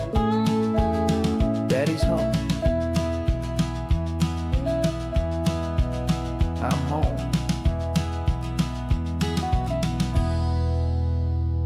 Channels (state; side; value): identical; both; correlation 1.00